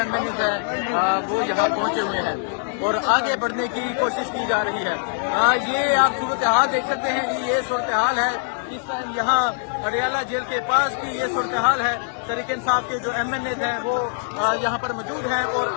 ہیں وہ یہاں پہنچے ہوئے ہیں اور آگے بڑھنے کی کوشش کی جا رہی ہے. یہ آپ صورتحال دیکھ سکتے ہیں کہ یہ صورتحال ہے اس ٹائم یہاں اڈیالہ جیل کے پاس کی یہ صورتحال ہے. تحریک انصاف کے جو MNAs ہیں وہ یہاں پر موجود ہیں اور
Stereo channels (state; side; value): silent; right; 61 dB below the other